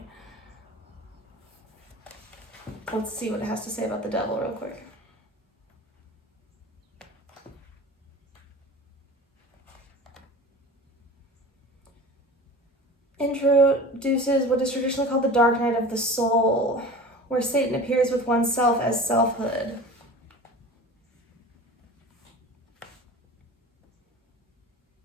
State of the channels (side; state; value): both; normal; correlation 0.37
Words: Let's see what it has to say about the devil real quick. Introduces what is traditionally called the dark night of the soul, where Satan appears with oneself as selfhood.